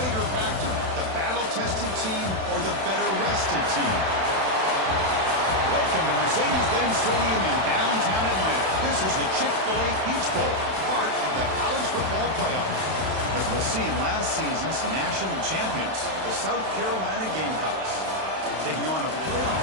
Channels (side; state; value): left; late; 31 ms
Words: factor, the battle-tested team or the better-rested team? Welcome to Mercedes-Benz Stadium in downtown Atlanta. This is the Chick-fil-A Peach Bowl, part of the college football playoff. As we'll see, last season's national champions, the South Carolina Gamecocks, taking on a playoff